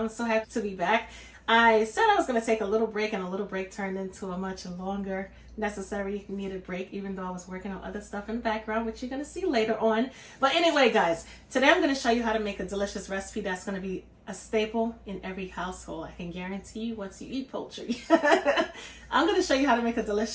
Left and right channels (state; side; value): identical; both; correlation 1.00